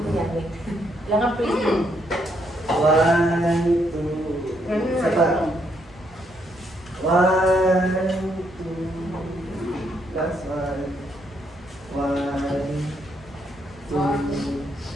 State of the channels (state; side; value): normal; both; correlation 0.74